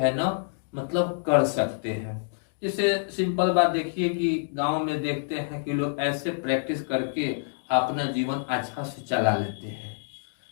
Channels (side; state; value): right; silent; digital silence